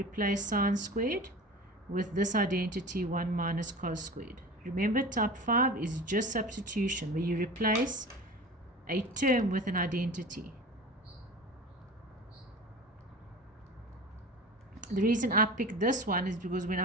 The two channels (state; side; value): normal; both; correlation 0.34